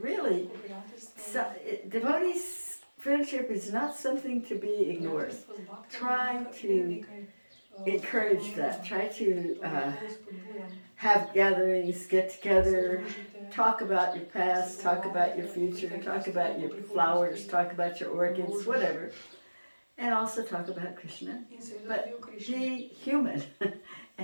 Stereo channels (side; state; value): both; inverted; correlation -1.00